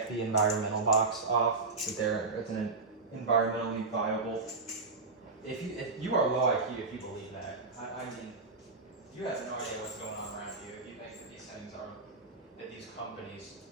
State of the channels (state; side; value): quieter; left; 3.9 dB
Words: the environmental box off that it's an environmentally viable. If you are low IQ if you believe that. I mean, you have no idea what's going on around you if you think that these things are, that these companies